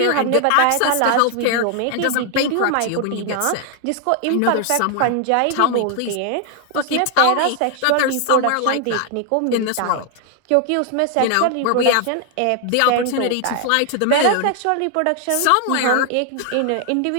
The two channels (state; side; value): different; both; correlation 0.00